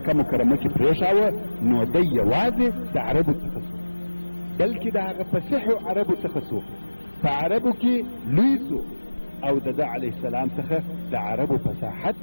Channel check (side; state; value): both; inverted; correlation -1.00